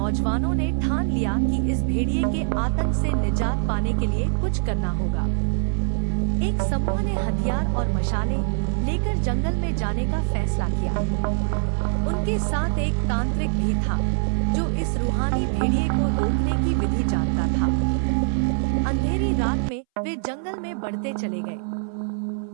ने ठान लिया कि इस भेड़िए के आतंक से निजात पाने के लिए कुछ करना होगा। एक समूह ने हथियार और मशालें लेकर जंगल में जाने का फैसला किया। उनके साथ एक तांत्रिक भी था जो इस रूहानी भेड़िए को रोकने की विधि जानता था। अंधेरी रात में वे जंगल में बढ़ते चले गए।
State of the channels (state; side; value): silent; left; 63 dB below the other